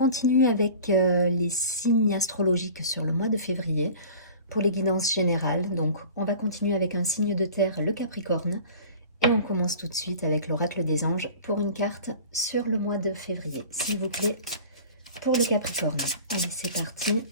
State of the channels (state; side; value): inverted; both; correlation -0.41